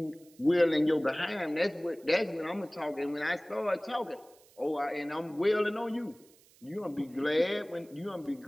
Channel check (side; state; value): right; noise; hiss, 28 dB below the sound